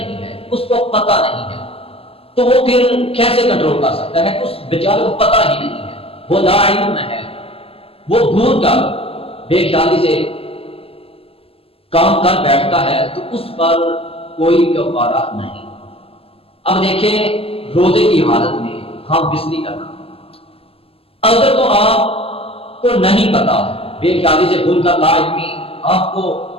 ہے، اس کو پتہ نہیں ہے، تو وہ پھر کیسے کنٹرول کر سکتا ہے؟ اس بیچارے کو پتہ ہی نہیں ہے، وہ لا علم ہے، وہ بھول کر بے خیالی سے کام کر بیٹھتا ہے تو اس پر کوئی کفارہ نہیں۔ اب دیکھیں روزے کی حالت میں ہم بسری کرنا، اگر تو آپ کو نہیں پتا، بے خیالی سے بھول کر لا علمی آپ کو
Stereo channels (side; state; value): right; late; 0.28 ms